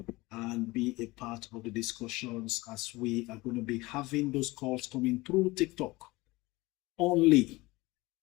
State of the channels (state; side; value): quieter; right; 21.4 dB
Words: and be a part of the discussions, as we are going to be having those calls coming through TikTok only.